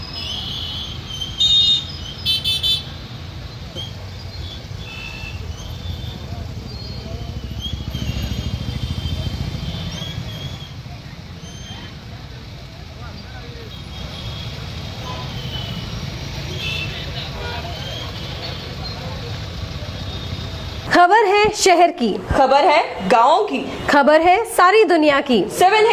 खबर है शहर की, खबर है गाँव की, खबर है सारी दुनिया की।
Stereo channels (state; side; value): identical; both; correlation 1.00